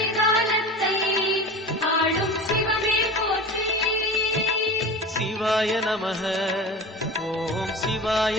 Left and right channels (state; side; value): normal; both; correlation 0.33